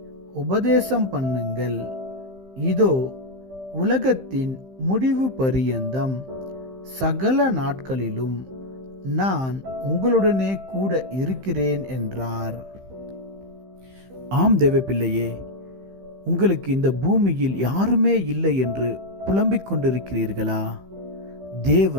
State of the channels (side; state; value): left; late; 15 ms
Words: உபதேசம் பண்ணுங்கள். இதோ உலகத்தின் முடிவு பரியந்தம் சகல நாட்களிலும் நான் உங்களுடனே கூட இருக்கிறேன் என்றார். ஆம் தேவ பிள்ளையே, உங்களுக்கு இந்த பூமியில் யாருமே இல்லை என்று புலம்பிக் கொண்டிருக்கிறீர்களா?